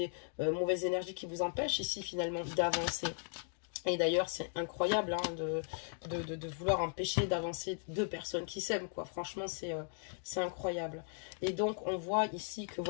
mauvaises énergies qui vous empêchent ici finalement d'avancer. Et d'ailleurs, c'est incroyable hein, de vouloir empêcher d'avancer deux personnes qui s'aiment, quoi. Franchement, c'est incroyable. Et donc, on voit ici que,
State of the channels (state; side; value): silent; right; 53 dB below the other